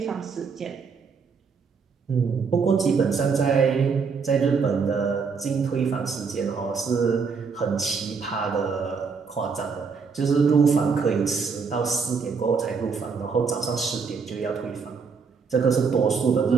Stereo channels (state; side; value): quieter; left; 5.4 dB